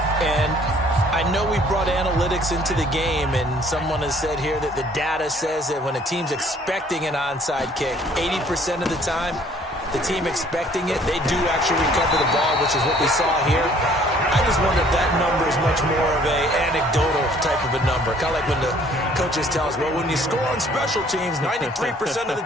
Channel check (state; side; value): normal; both; correlation 0.58